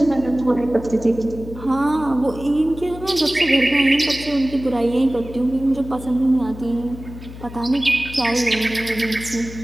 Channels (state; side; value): noise; left; hum, 14 dB below the sound